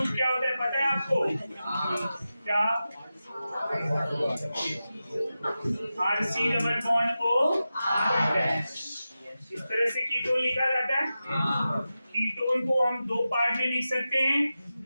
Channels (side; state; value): both; inverted; correlation -0.93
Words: क्या होता है पता है आपको? क्या? RC double bond O R'। इस तरह से कीटोन लिखा जाता है। कीटोन को हम दो पार्ट में लिख सकते हैं।